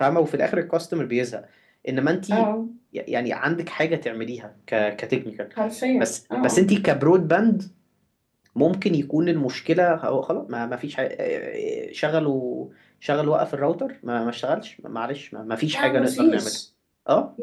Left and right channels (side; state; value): both; identical; correlation 1.00